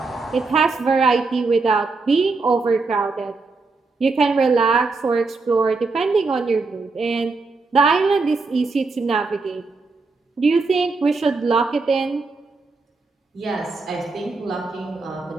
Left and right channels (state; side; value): quieter; left; 3.9 dB